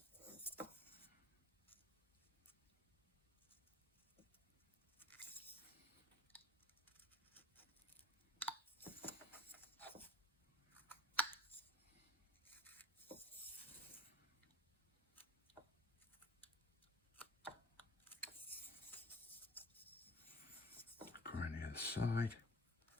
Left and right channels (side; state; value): both; normal; correlation 0.50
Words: Go around the other side.